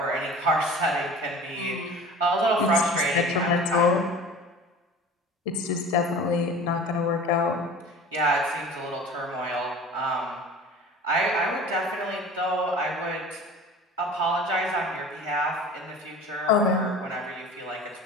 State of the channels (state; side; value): normal; both; correlation 0.40